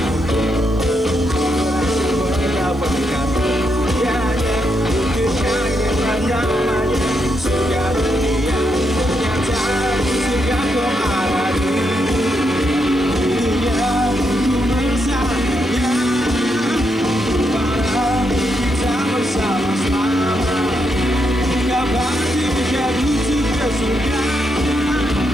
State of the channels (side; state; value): right; noise; hiss, 29 dB below the sound